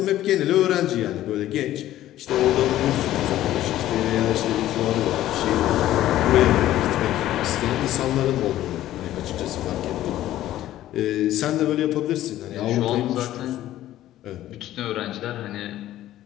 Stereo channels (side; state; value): right; quieter; 13.7 dB